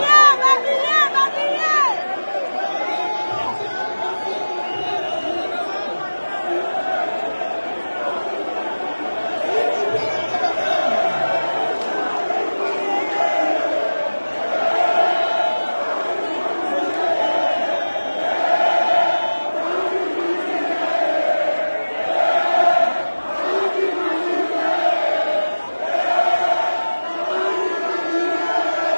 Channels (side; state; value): both; inverted; correlation -1.00